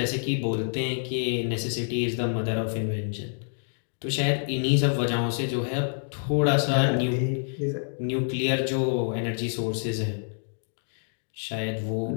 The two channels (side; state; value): right; silent; digital silence